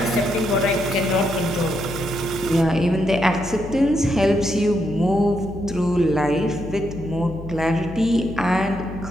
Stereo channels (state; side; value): noise; left; hum, 12 dB below the sound